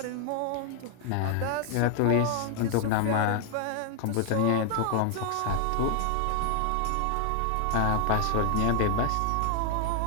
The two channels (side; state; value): both; different; correlation 0.00